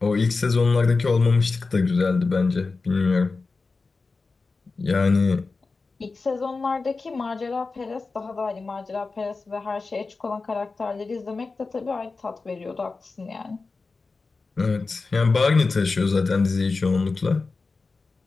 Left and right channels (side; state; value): right; quieter; 4.0 dB